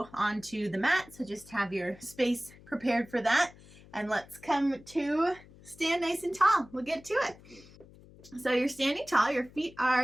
onto the mat, so just have your space prepared for that. And let's come to stand nice and tall. We'll get to it. So you're standing tall, your feet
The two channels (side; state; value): left; noise; hum, 22 dB below the sound